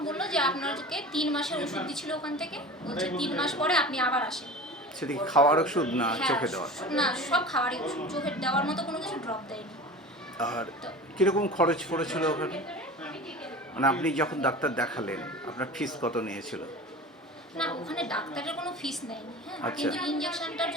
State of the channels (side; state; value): both; normal; correlation 0.35